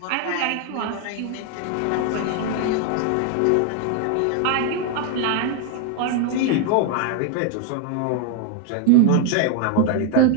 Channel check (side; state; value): both; different; correlation 0.00